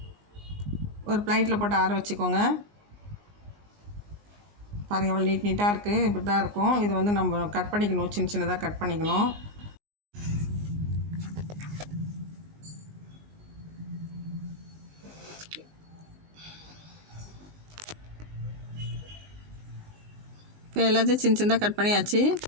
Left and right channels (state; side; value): late; left; 19 ms